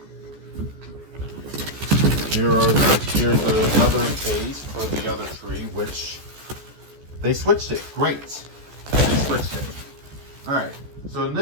Here's the other phase for the other tree, which they switched it. Great. They switched it. All right. So in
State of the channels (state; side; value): late; left; 14 ms